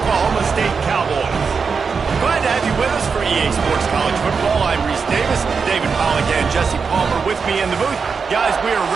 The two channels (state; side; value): quieter; left; 5.4 dB